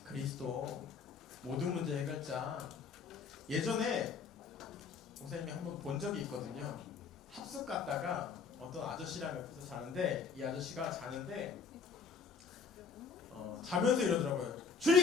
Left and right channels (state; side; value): quieter; right; 5.4 dB